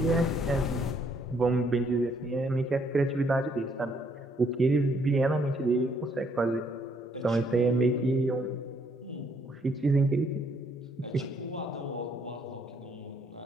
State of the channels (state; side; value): normal; both; correlation 0.69